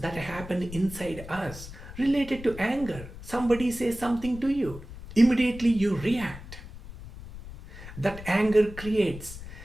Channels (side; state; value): left; noise; rumble, 13 dB below the sound